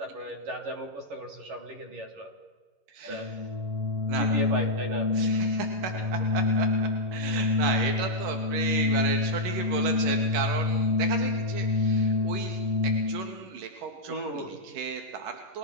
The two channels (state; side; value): late; left; 11 ms